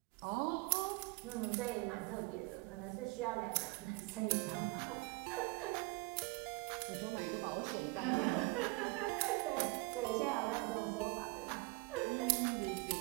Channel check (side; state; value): left; quieter; 26.5 dB